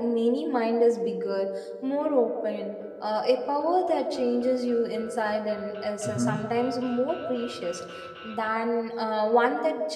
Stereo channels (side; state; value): both; identical; correlation 1.00